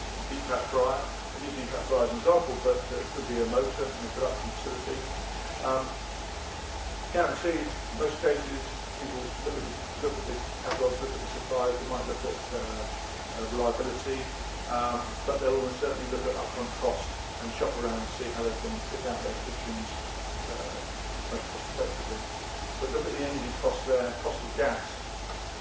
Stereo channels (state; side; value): identical; both; correlation 1.00